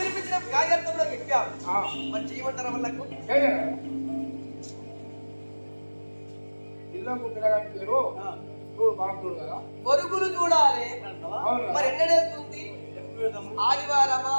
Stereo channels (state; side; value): inverted; both; correlation -1.00